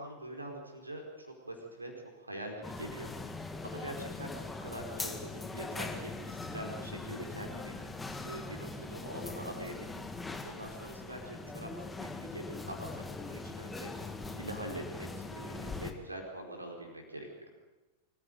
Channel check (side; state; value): both; normal; correlation 0.24